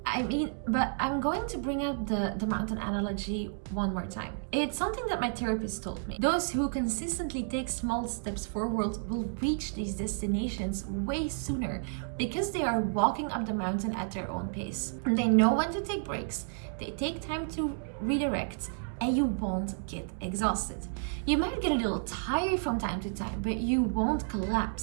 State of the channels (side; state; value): left; silent; digital silence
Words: I mean, but I'm going to bring up the mountain analogy one more time. It's something that my therapist told me. Those who consistently take small steps forward will reach these destinations way sooner because they are walking up the mountain at their own pace. They know when to take breaks, they take time to redirect, and you won't get exhausted. You might get a little tired from time to time, but you won't